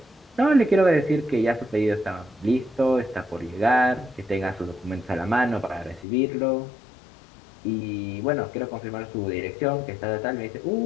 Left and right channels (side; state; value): right; drops out; at 6.1 s